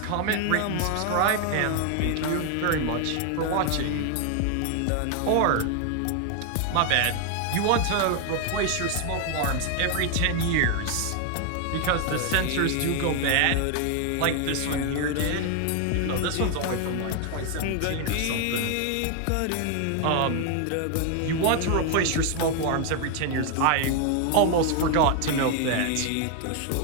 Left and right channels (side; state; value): both; different; correlation 0.00